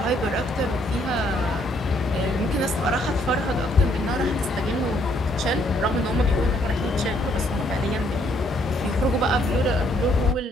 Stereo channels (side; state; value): both; normal; correlation 0.69